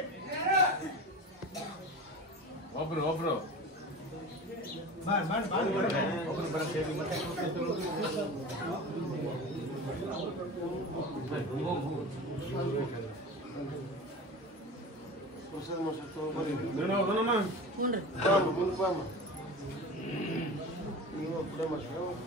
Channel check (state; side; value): normal; both; correlation 0.32